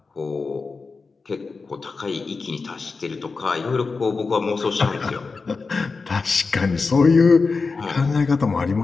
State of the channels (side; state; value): right; quieter; 4.4 dB